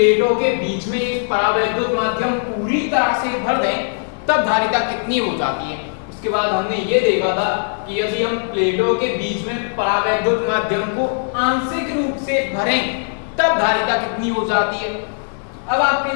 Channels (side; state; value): right; silent; 66 dB below the other